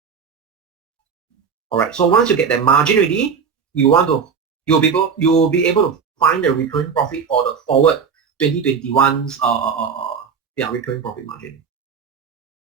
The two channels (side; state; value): left; quieter; 6.3 dB